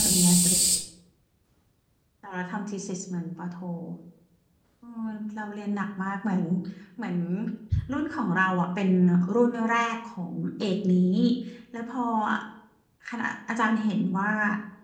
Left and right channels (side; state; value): both; identical; correlation 1.00